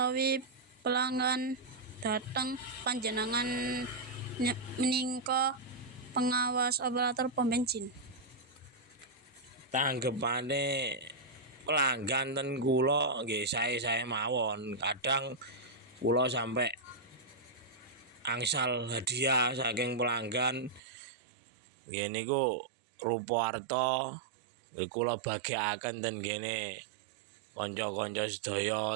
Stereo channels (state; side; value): drops out; left; at 20.8 s